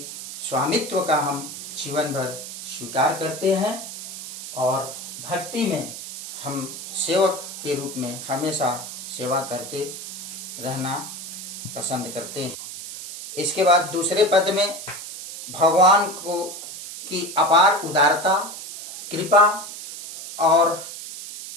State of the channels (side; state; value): right; noise; hiss, 10 dB below the sound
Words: स्वामित्व का हम जीवन भर स्वीकार करते हैं और भक्ति में हम सेवक के रूप में हमेशा सेवा करते रहना पसंद करते हैं। इसके बाद दूसरे पद में भगवान को की अपार उदारता, कृपा और